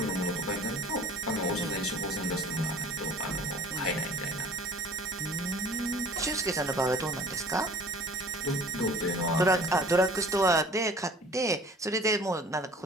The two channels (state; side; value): normal; both; correlation 0.48